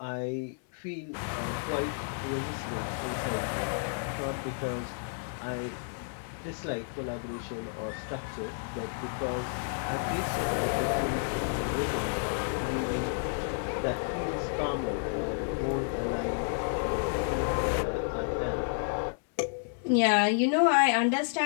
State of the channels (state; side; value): silent; right; digital silence